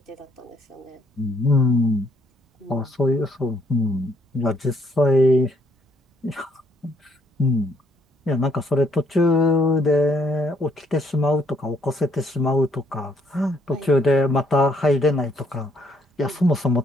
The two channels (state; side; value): normal; both; correlation 0.69